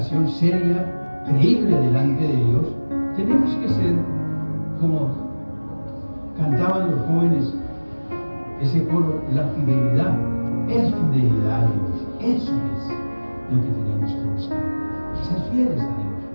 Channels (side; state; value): both; inverted; correlation -1.00